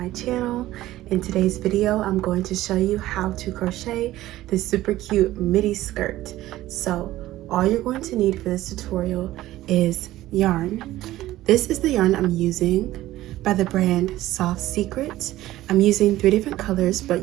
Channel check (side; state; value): left; quieter; 15.4 dB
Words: channel. In today's video I'm going to show you how to crochet this super cute midi skirt. So all you're going to need for this tutorial is yarn. This is the yarn I'm using by the brand Soft Secret. I'm using 3 different colors, but